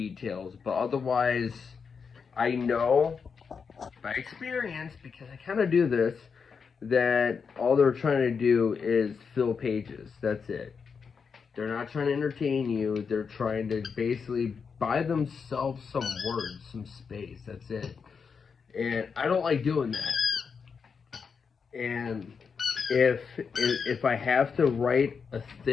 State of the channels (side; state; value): right; quieter; 5.8 dB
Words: But otherwise, I know by experience, because I kind of do this, that all they're trying to do is fill pages. That's it. They're not trying to entertain you. They're trying to basically buy themselves some words, some space. That's it. And I don't like doing that. And if I have to write a